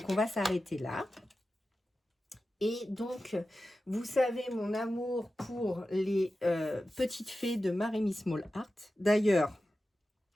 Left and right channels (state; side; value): normal; both; correlation 0.93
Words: on va s'arrêter là. Et donc, vous savez mon amour pour les petites fées de Maremy Small Art. D'ailleurs,